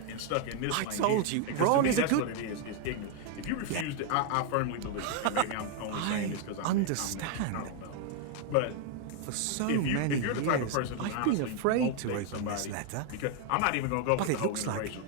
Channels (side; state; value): both; different; correlation 0.01